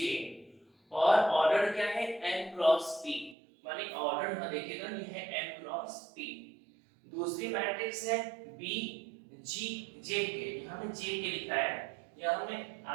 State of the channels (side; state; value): left; drops out; at 3.4 s